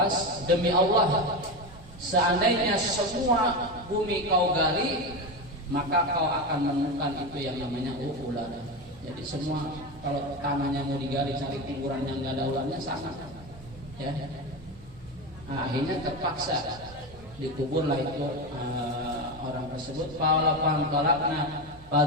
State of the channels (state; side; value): noise; right; hum, 22 dB below the sound